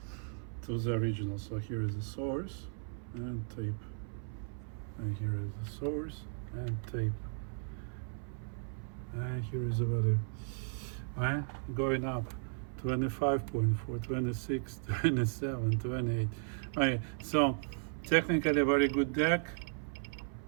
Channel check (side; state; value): left; silent; 54 dB below the other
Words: to the original. So here is the source and tape, and here is the source and tape, and here is the value. Going up 25.4, 26, 27, 28. So technically very good deck,